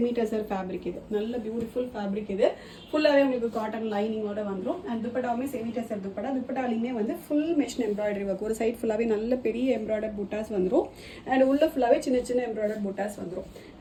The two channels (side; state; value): both; identical; correlation 1.00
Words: டெசர் ஃபேப்ரிக் இது. நல்ல பியூட்டிஃபுல் ஃபேப்ரிக் இது. ஃபுல்லாகவே உங்களுக்கு காட்டன் லைனிங்கோட வந்துடும். அண்ட் துப்பட்டாவுமே செமி டெசர் துப்பட்டா. துப்பட்டாலையுமே வந்து ஃபுல் மிஷின் எம்ப்ராய்டரி ஒர்க். ஒரு சைட் ஃபுல்லாகவே நல்ல பெரிய எம்ப்ராய்டர் புட்டாஸ் வந்துடும். அண்ட் உள்ள ஃபுல்லாகவே சின்ன சின்ன எம்ப்ராய்டர் புட்டாஸ் வந்துடும்.